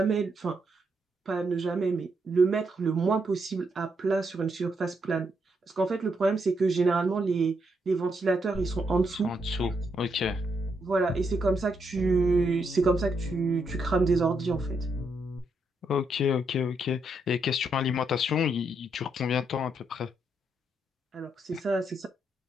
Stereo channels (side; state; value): both; normal; correlation 0.78